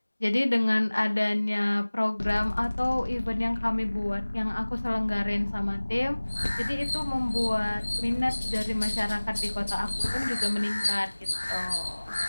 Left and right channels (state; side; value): inverted; both; correlation -1.00